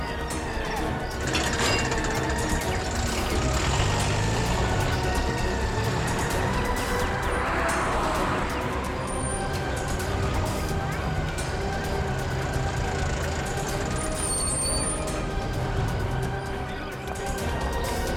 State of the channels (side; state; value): both; identical; correlation 1.00